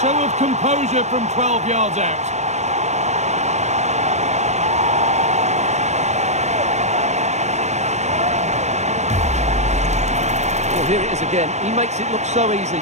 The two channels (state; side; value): late; left; 0.33 ms